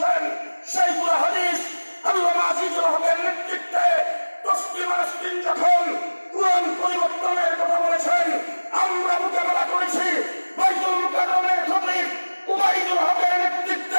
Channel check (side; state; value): both; inverted; correlation -1.00